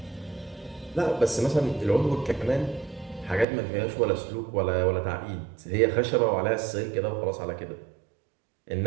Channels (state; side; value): drops out; left; at 3.5 s